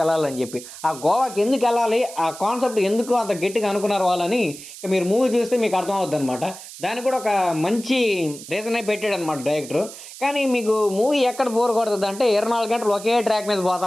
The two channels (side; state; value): right; noise; hiss, 14 dB below the sound